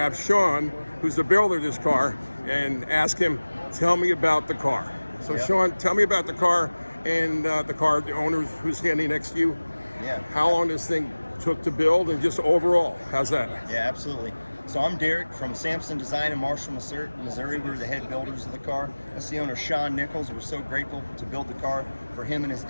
Sean, who's the builder of this car, and ask him, tell me about the car. So Sean, tell me about the car and the owner who's standing next to you. Yeah. How long this thing took to build and just overall, how's that? Yeah, absolutely. So I'm Derek from Sampson Design in Marshall, Missouri. We're the head builders of the car. That's the owner, Sean Nichols. We're so grateful to build the car for him and his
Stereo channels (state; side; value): inverted; both; correlation -1.00